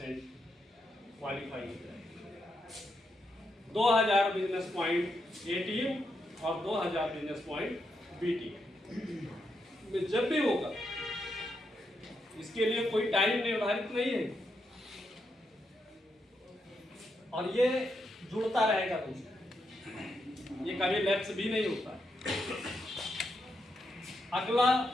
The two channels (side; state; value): both; normal; correlation 0.82